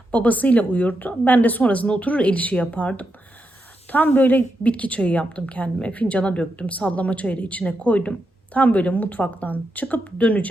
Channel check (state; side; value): normal; both; correlation 0.85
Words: Babasıyla uyurdu. Ben de sonrasında oturur el işi yapardım. Tam böyle bitki çayı yaptım kendime. Fincana döktüm. Sallama çayı da içine koydum. Tam böyle mutfaktan çıkıp